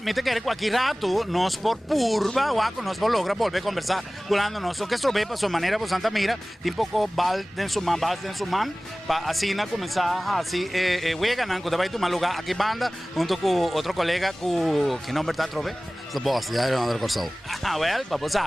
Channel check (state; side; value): normal; both; correlation 0.98